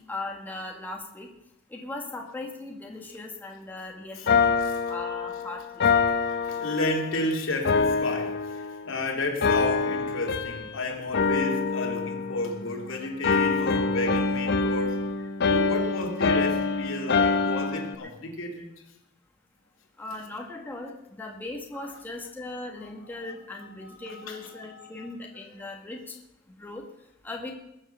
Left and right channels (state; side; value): quieter; right; 3.7 dB